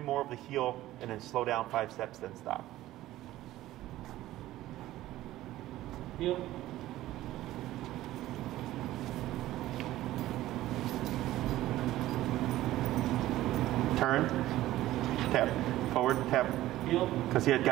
of the heel and then slow down 5 steps, then stop. Heel. Turn. Tap. Forward. Tap. Heel. Because he had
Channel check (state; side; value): quieter; left; 15.2 dB